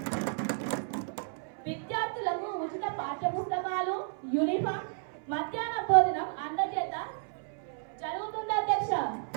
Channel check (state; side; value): silent; left; 56 dB below the other